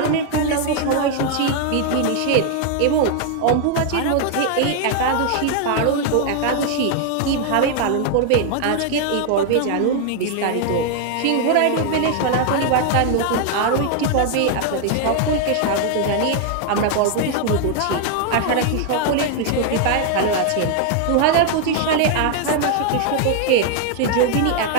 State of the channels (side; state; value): both; different; correlation 0.00